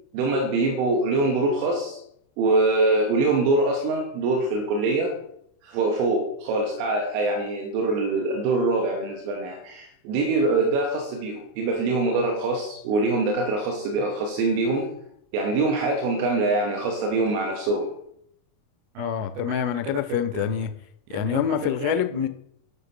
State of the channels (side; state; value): left; late; 29 ms